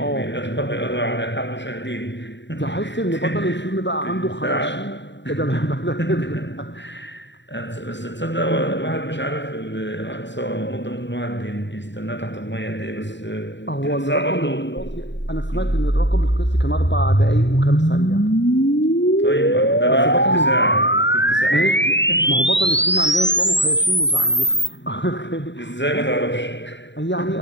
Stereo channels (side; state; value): right; late; 0.52 ms